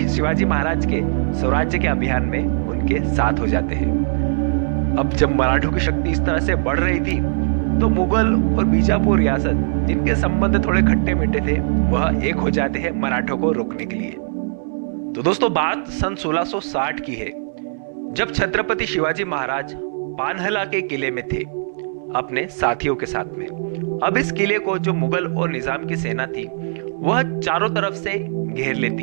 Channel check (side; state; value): left; silent; digital silence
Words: शिवाजी महाराज के स्वराज्य के अभियान में उनके साथ हो जाते हैं। अब जब मराठों की शक्ति इस तरह से बढ़ रही थी, तो मुगल और बीजापुर रियासत, जिनके संबंध थोड़े खट्टे मीठे थे, वह एक हो जाते हैं मराठों को रोकने के लिए। तो दोस्तों, बात सन 1660 की है, जब छत्रपति शिवाजी महाराज पानहला के किले में थे अपने साथियों के साथ में। अब इस किले को जो मुगल और निजाम की सेना थी, वह चारों तरफ से घेर